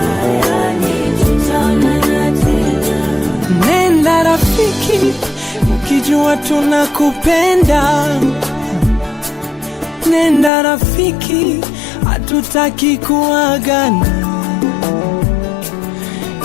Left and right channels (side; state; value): right; drops out; at 10.5 s